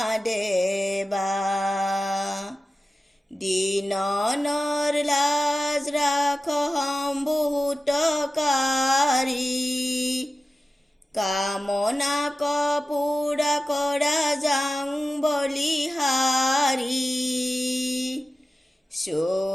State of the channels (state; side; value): normal; both; correlation 0.94